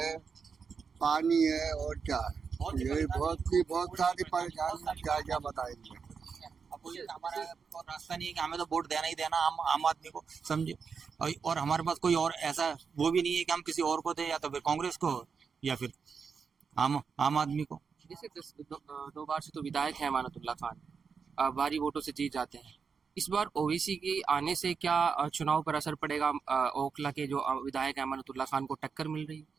पानी है और क्या है। यही बहुत सारी परेशानी, क्या क्या बताएंगे। अब बोलिए हमारा और रास्ता नहीं है कि हमें तो वोट देना ही देना आम आदमी को, समझे। और हमारे पास कोई और ऐसा वो भी नहीं है कि हम किसी और को दे, या तो फिर कांग्रेस को या फिर आम आदमी को। जैसे 2 बार से तो विधायक है अमानतुल्लाह खान, भारी वोटों से जीत जाते हैं। इस बार ओवैसी के आने से क्या चुनाव पर असर पड़ेगा? ओखला के जो विधायक अमानतुल्लाह खान को टक्कर मिल रही है।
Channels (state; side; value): quieter; left; 5.8 dB